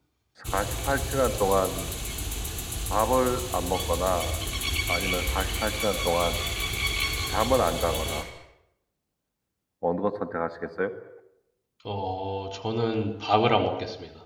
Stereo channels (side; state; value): both; identical; correlation 1.00